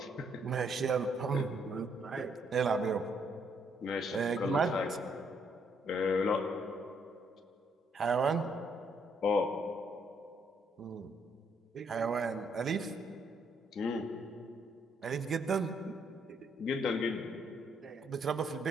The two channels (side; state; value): both; normal; correlation 0.71